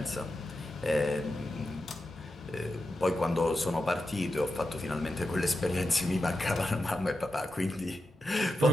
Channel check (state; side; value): normal; both; correlation 0.90